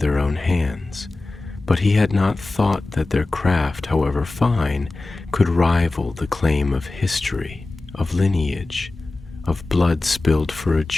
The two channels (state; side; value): quieter; right; 3.2 dB